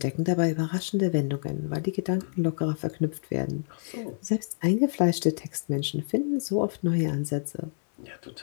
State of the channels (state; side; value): silent; right; 59 dB below the other